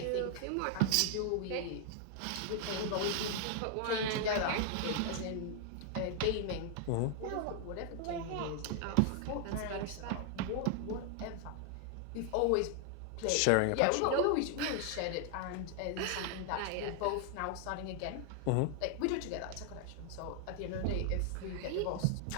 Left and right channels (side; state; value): both; different; correlation 0.00